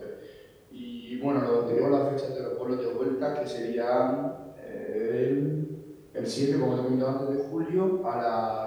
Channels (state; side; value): identical; both; correlation 1.00